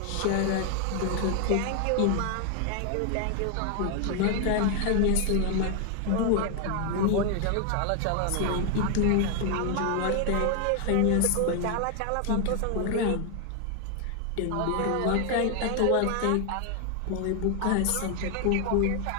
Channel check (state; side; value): different; both; correlation 0.00